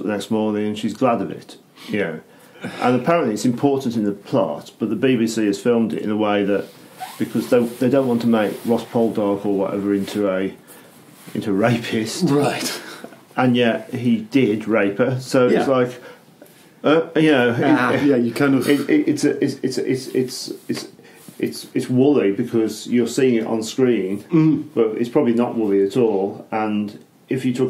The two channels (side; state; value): both; identical; correlation 1.00